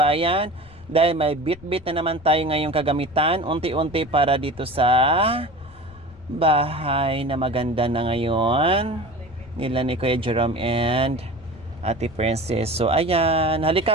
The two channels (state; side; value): noise; left; rumble, 23 dB below the sound